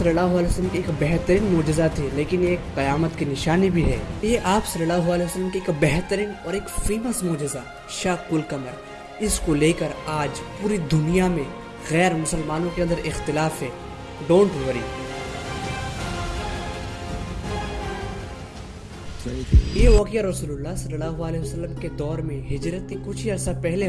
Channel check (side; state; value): both; identical; correlation 1.00